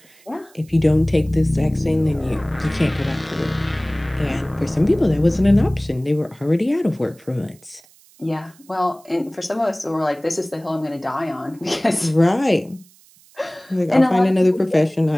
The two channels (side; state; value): right; noise; hiss, 28 dB below the sound